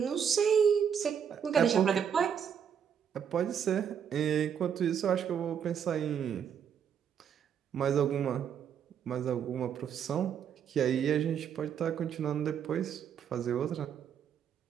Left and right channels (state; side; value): quieter; left; 8.1 dB